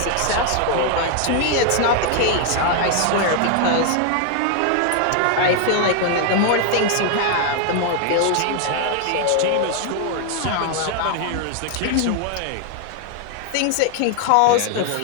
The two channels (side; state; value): both; different; correlation 0.00